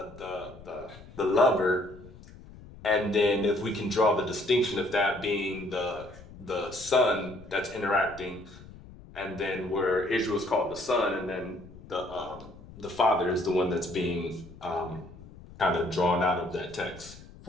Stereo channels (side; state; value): left; noise; rumble, 19 dB below the sound